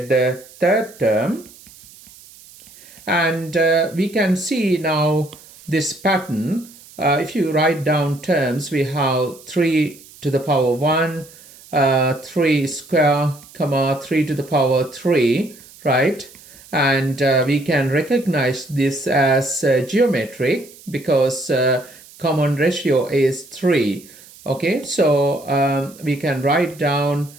the third term. And we can see now this pattern. If you write down terms, we have 3 to the power 1, 3 square, comma 3 to the power 3, right? And we can recognize this as geometric because common ratio is 3. Okay, so we can write down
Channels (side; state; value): right; noise; hiss, 22 dB below the sound